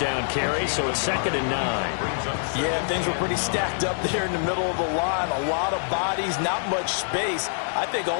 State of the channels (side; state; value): right; silent; digital silence